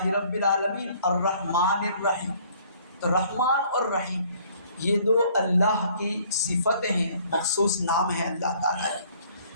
رب العالمین الرحمن الرحیم. تو رحمان اور رحیم یہ دو اللہ کی صفتیں ہیں، مخصوص نام ہے اللہ تعالیٰ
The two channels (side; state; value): both; inverted; correlation -0.59